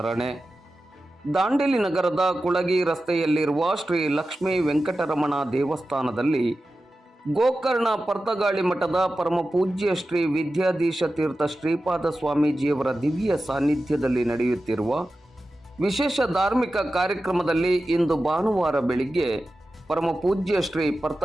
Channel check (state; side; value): normal; both; correlation 0.93